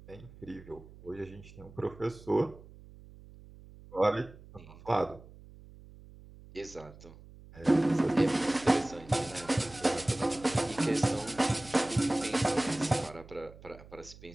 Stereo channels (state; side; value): noise; right; hum, 20 dB below the sound